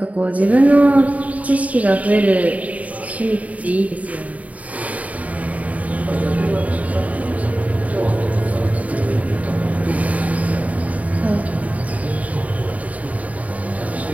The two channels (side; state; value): left; late; 0.070 ms